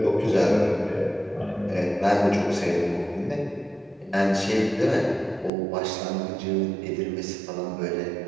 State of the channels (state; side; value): drops out; left; at 5.5 s